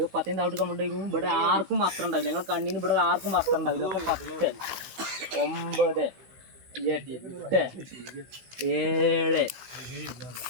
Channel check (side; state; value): left; late; 16 ms